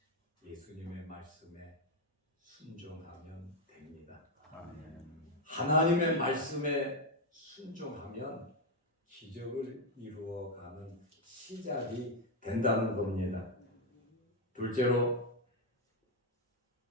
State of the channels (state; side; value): normal; both; correlation 0.04